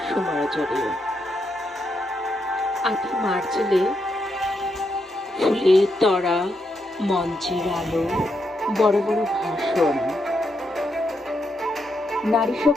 সুমারজরে আটি মার্চেলে ফুলের তরা, মঞ্চের আলো, বড় বড় ভাষণ, নারী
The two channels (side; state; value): both; normal; correlation 0.81